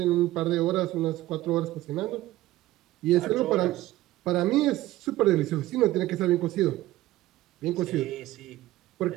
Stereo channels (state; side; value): quieter; left; 16.2 dB